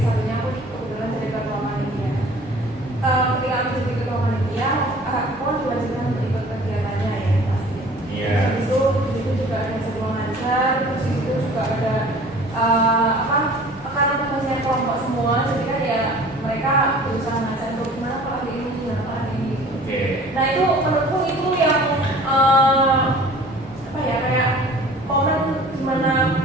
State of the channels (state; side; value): normal; both; correlation 0.47